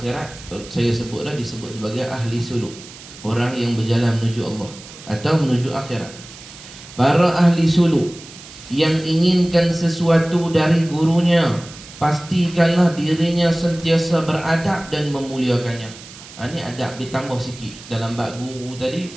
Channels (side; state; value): right; noise; hiss, 17 dB below the sound